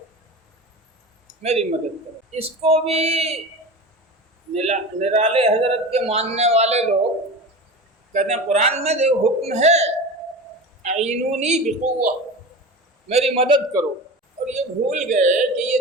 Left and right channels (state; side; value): normal; both; correlation 0.30